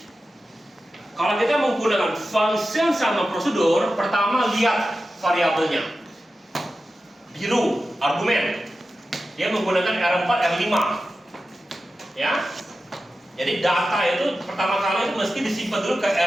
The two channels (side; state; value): both; normal; correlation 0.93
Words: kalau kita menggunakan function sama prosedur, pertama lihat variabelnya. Biru, argumen. Dia menggunakan R4, R5. Ya. Jadi data itu pertama kali itu mesti disimpan dulu ke